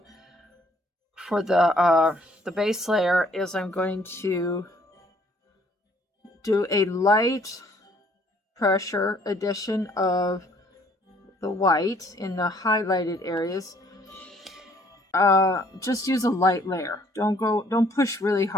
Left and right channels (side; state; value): both; normal; correlation 0.62